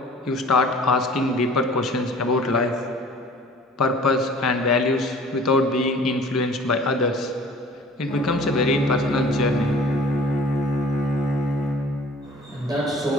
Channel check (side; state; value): both; normal; correlation 0.49